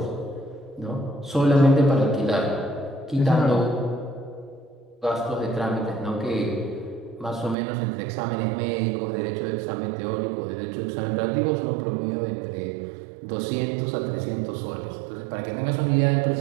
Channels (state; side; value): drops out; left; at 7.6 s